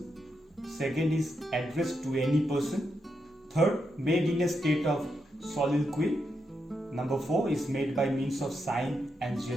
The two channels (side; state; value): both; normal; correlation 0.83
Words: Second is addressed to any person. Third, made in a state of soliloquy. Number 4 is made by means of sign and